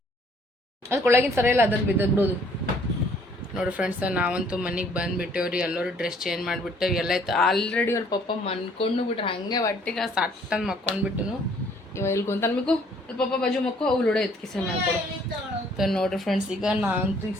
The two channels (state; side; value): normal; both; correlation 0.61